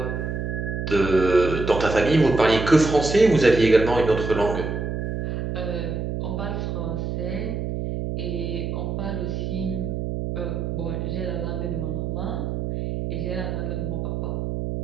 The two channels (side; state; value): right; noise; hum, 3 dB below the sound